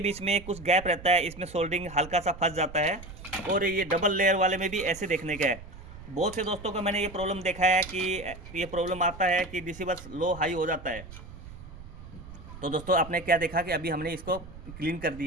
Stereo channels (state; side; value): noise; right; rumble, 15 dB below the sound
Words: बीच में कुछ गैप रहता है, इसमें सोल्डिंग हल्का सा फंस जाता है। और ये डबल लेयर वाले में भी ऐसे देखने का है। बहुत से दोस्तों को मैंने ये प्रॉब्लम देखा है कि ये प्रॉब्लम आता है कि डीसी बस लो हाई हो जाता है। तो दोस्तों आपने क्या देखा कि अभी हमने इसको क्लीन कर